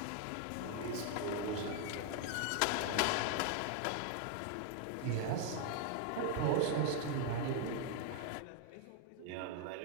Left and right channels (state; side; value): different; both; correlation 0.00